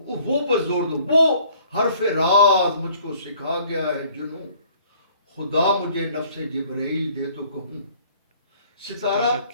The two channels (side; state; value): both; inverted; correlation -0.57